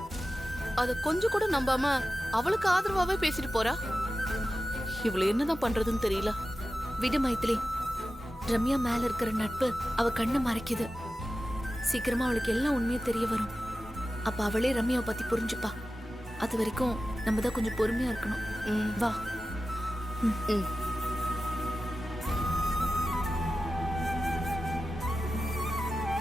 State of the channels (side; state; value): both; normal; correlation 0.94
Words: அத கொஞ்சம் கூட நம்பாம அவளுக்கு ஆதரவாவே பேசிட்டு போறா. இவள என்னதான் பண்றதுன்னு தெரியல. விடு மைத்திலி, ரம்யா மேல இருக்கிற நட்பு அவ கண்ணை மறைக்குது. சீக்கிரமா அவளுக்கு எல்லாம் உண்மையும் தெரிய வரும். அப்ப அவளே ரம்யாவை பத்தி புரிஞ்சுப்பா. அது வரைக்கும் நம்ம தான் கொஞ்சம் பொறுமையா இருக்கணும். வா. ம்.